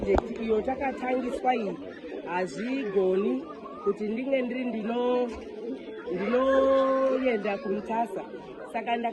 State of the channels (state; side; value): identical; both; correlation 1.00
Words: iyo takatangiswa iyi hazvigoni kuti ndinge ndiri ndinoenda kumutasa. Saka